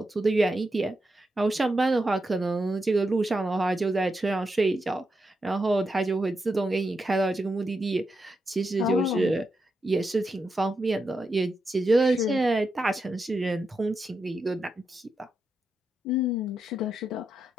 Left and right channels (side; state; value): both; normal; correlation 0.85